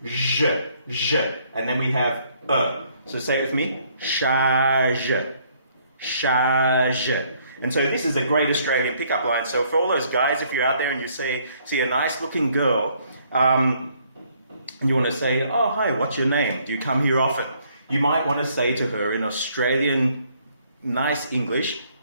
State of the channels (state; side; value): inverted; both; correlation -0.66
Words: zh, zh, and then we have So say it with me, charge, charge. And so this is a great Australian pickup line. So for all those guys, if you're out there and you see a nice-looking girl, and you want to say, "Oh, hi, what's your name? Do you come here often?" You might want to say to her in Australian nice English,